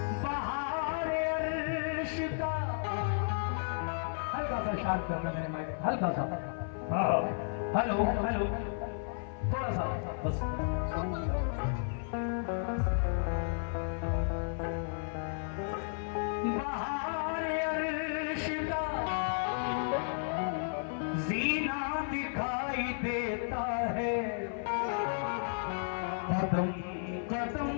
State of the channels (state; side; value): silent; right; 56 dB below the other